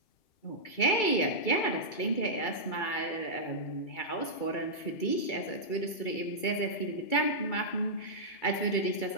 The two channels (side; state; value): right; late; 2.3 ms